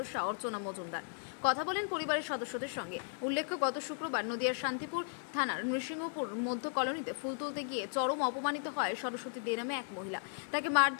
অর্চনা মজুমদার। কথা বলেন পরিবারের সদস্যদের সঙ্গে। উল্লেখ্য, গত শুক্রবার নদিয়ার শান্তিপুর থানার নৃসিংহপুর মধ্য কলোনিতে ফুল তুলতে গিয়ে চরম অপমানিত হয় সরস্বতী দে নামে এক মহিলা। তাকে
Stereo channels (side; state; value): right; silent; 54 dB below the other